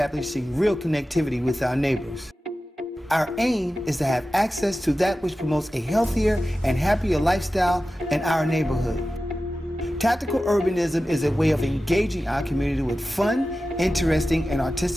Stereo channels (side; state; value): both; normal; correlation 0.94